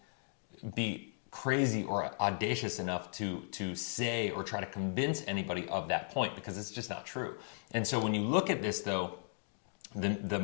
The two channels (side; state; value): right; silent; digital silence